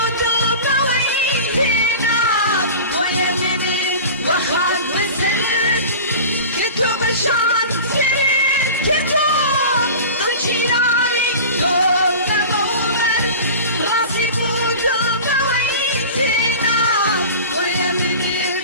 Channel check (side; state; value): both; inverted; correlation -0.35